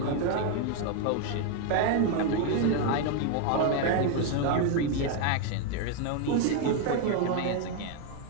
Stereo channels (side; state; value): both; different; correlation 0.01